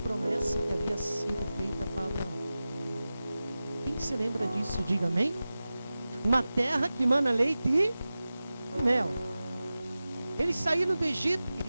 que havia sido feita para Abraão. Quem se lembra disso, diga amém. Uma terra que mana leite e mel. Eles saíram do Egito,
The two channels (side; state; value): both; inverted; correlation -0.95